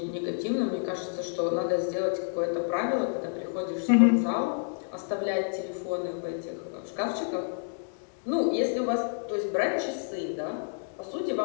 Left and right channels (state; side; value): silent; right; digital silence